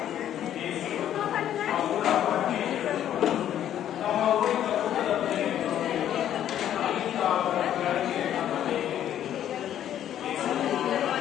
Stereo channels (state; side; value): quieter; right; 10.9 dB